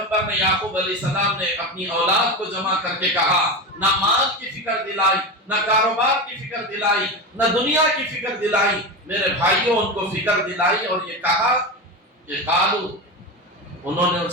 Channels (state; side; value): normal; both; correlation 0.21